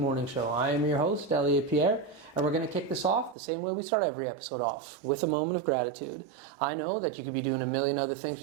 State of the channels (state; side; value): drops out; left; at 3.4 s